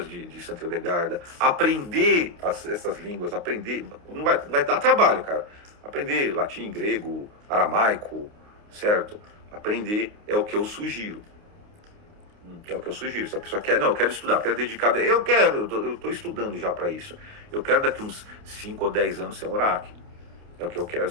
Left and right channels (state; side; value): late; left; 29 ms